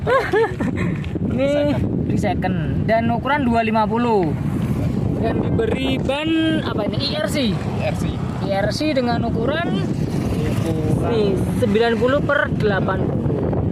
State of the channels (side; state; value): both; identical; correlation 1.00